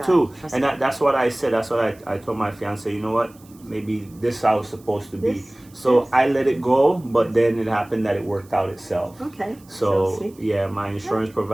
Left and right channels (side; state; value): right; noise; hiss, 28 dB below the sound